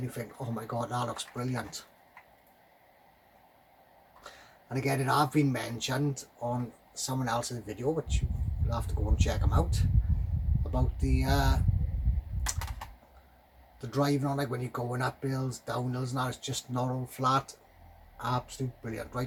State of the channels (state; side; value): identical; both; correlation 1.00